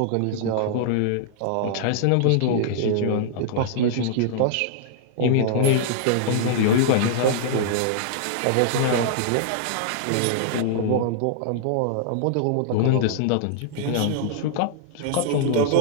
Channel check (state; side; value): different; both; correlation -0.01